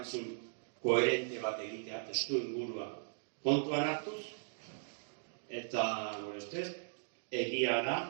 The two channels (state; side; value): silent; left; digital silence